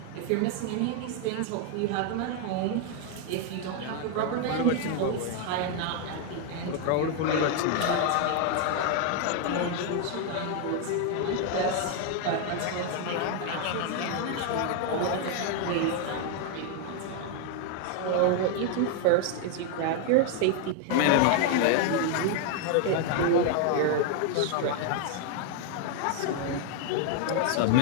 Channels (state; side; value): different; both; correlation 0.00